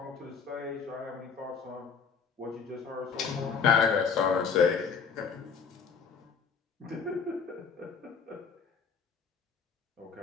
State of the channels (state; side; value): quieter; right; 6.1 dB